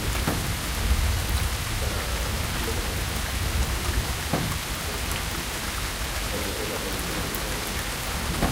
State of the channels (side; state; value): both; identical; correlation 1.00